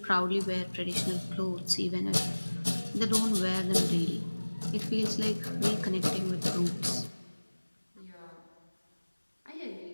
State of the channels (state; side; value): inverted; both; correlation -1.00